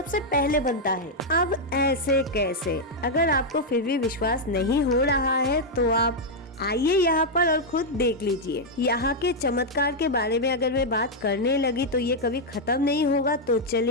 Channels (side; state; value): both; normal; correlation -0.02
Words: पहले बनता है। अब ऐसे कैसे? अगर आपको फिर भी विश्वास नहीं हो रहा है तो आप आइए यहाँ पर और खुद देख लीजिए। यहाँ के चमत्कार के बारे में अगर मैं बात करने लगी तो ये कभी खत्म नहीं होगा। तो